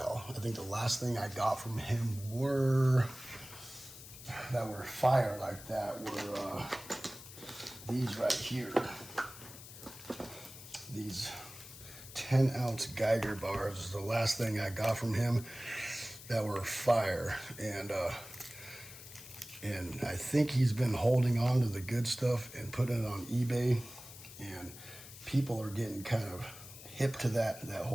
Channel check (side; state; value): left; noise; hiss, 15 dB below the sound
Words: I think the last thing I got from him that were fire like that were these right here. These 10-ounce Geiger bars is the last thing I got from him that were fire. And I think he's been holding on to the good stuff and putting it on eBay, and people are getting kind of hip to that